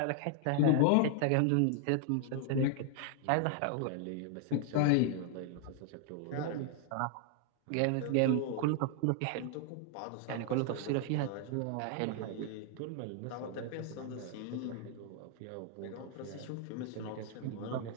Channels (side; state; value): both; different; correlation 0.00